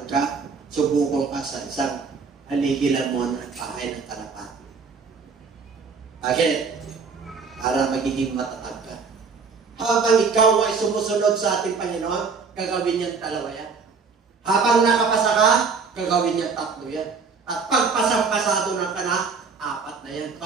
ka, subukong ka sa isang haligilan mo ng bahay ng kalapati. Bakit? Para magiging matatag ka. Habang ikaw ay sumusunod sa ating Panginoon, gagawin niyang dalawa yan. Habang nakapasa ka, gagawin niyang tatlo yan. At pagpasang-pasado ng ka na, apat na yan.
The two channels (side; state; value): left; quieter; 5.1 dB